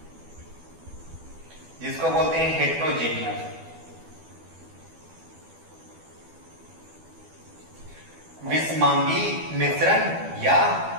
जिसको बोलते हैं हेट्रोजेनियस। विषमांगी मिश्रण या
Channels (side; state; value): left; late; 12 ms